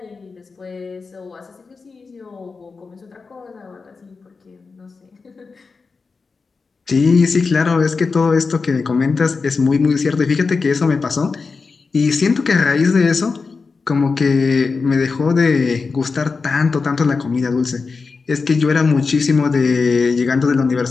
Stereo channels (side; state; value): right; quieter; 4.6 dB